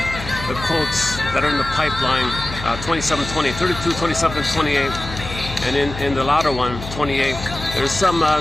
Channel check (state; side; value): noise; left; hum, 10 dB below the sound